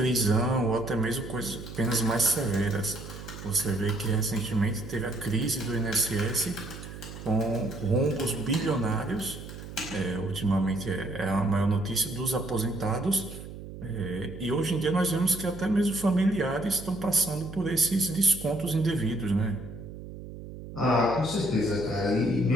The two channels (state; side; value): noise; right; hum, 12 dB below the sound